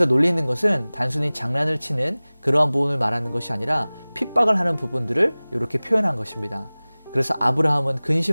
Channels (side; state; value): both; inverted; correlation -0.99